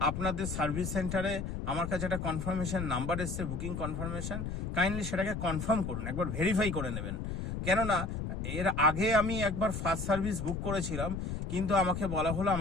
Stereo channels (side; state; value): left; noise; rumble, 4 dB below the sound